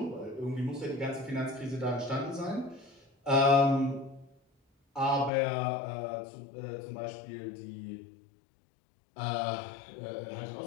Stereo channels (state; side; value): drops out; right; at 5.3 s